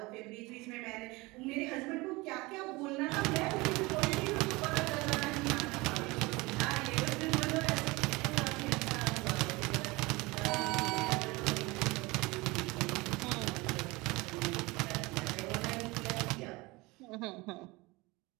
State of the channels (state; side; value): quieter; left; 23.2 dB